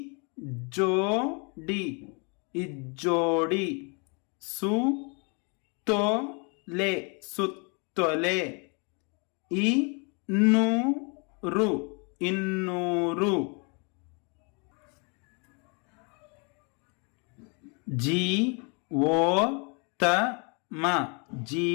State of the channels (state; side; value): quieter; right; 34.4 dB